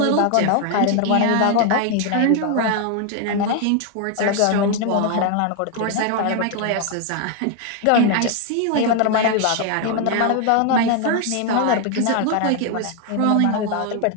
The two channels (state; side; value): different; both; correlation 0.00